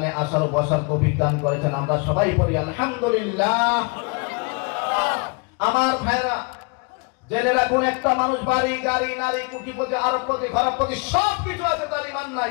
আসার ও বসার তৌফিক দান করেছেন। আমরা সবাই পড়ি আলহামদুলিল্লাহ। আমার ভাইরা জেনে রাখুন, একটা মানুষ বাড়ি গাড়ি নারী কোটিপতি আরবপতি ঘরপতি সব কিছু আছে, তার ঈমান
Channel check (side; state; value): right; quieter; 30.7 dB